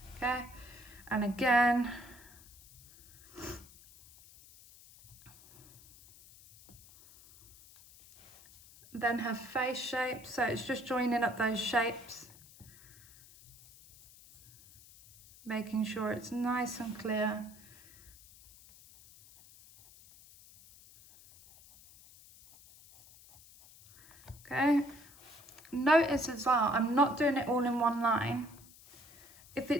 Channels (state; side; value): noise; left; hiss, 22 dB below the sound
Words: Okay, and again. Then her face shape, so it's just joining up those shapes. Making sure it's nice and clear. Okay, notice as well, I'm not doing it all in one line. If